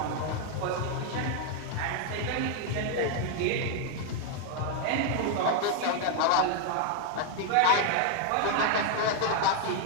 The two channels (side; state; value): both; different; correlation 0.00